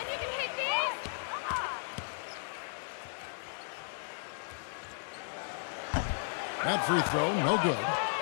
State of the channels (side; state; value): right; silent; digital silence